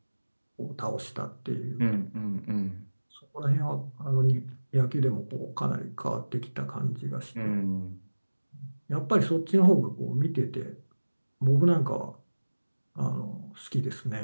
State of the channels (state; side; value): inverted; both; correlation -1.00